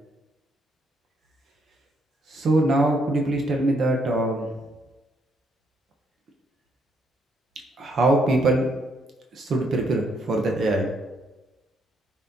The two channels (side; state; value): both; normal; correlation 0.73